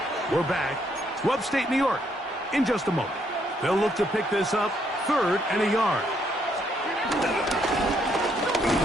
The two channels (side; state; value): both; normal; correlation 0.72